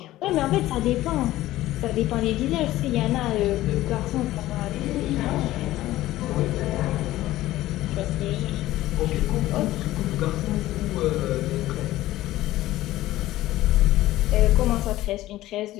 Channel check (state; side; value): quieter; right; 15.8 dB